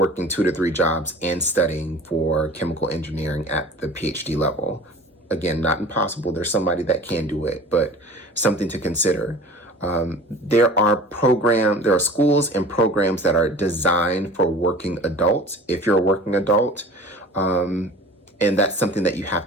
2 to 3 jobs and studying for chemical engineering at the PhD level. Again, not impossible. There's somebody that can do it, but something to consider. There are schools and programs that are designed for working adults, if you're a working adult, and that's something that you have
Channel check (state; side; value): normal; both; correlation 0.42